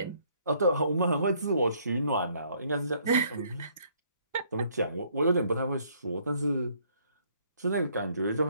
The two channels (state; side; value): inverted; both; correlation -0.65